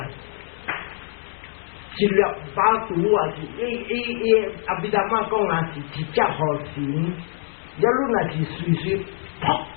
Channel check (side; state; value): right; silent; digital silence